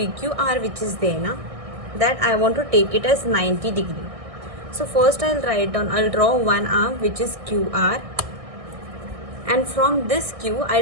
which is there na, that I want to take it as 90 degree. So first I'll write down, I'll draw one arm which is QR, and from this Q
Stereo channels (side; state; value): left; late; 1.6 ms